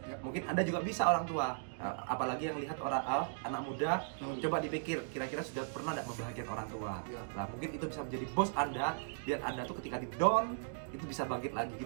Ya. mungkin Anda juga bisa orang tua. Apalagi yang lihat orang anak muda, Betul. coba dipikir kira-kira sudah pernah tidak membahagiakan orang tua. Ya. Nah, mungkin itu bisa menjadi bos Anda, biar Anda tuh ketika di down itu bisa bangkit lagi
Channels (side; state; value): left; silent; digital silence